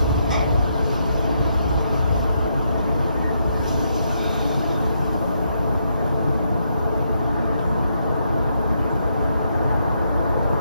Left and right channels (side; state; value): both; inverted; correlation -0.78